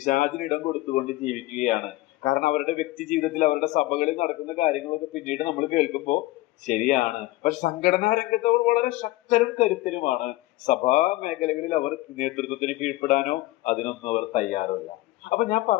കൊടുത്തുകൊണ്ട് ജീവിക്കുകയാണ്. കാരണം അവരുടെ വ്യക്തി ജീവിതത്തിൽ അവരുടെ സഭകളിൽ നടക്കുന്ന കാര്യങ്ങളൊക്കെ പിന്നീട് നമ്മൾ കേൾക്കുമ്പോൾ ശരിയാണ്. പക്ഷെ സംഘടനാ രംഗത്ത് അവർ വളരെ ശക്തരും കരുത്തരുമാണ്. സഭാ മേഖലകളിൽ അവർ നേതൃത്വത്തിന് കീഴ്പ്പെടാനോ അതിനൊന്നും അവർ തയ്യാറല്ല. അപ്പൊ ഞാൻ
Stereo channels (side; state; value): right; quieter; 18.5 dB